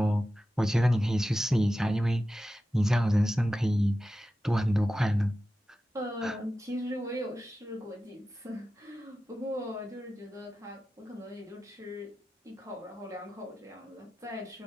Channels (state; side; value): normal; both; correlation 0.93